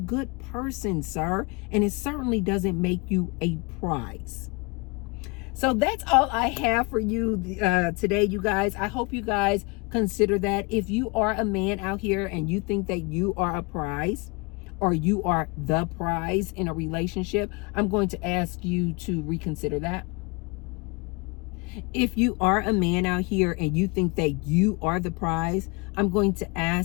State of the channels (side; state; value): right; quieter; 28.3 dB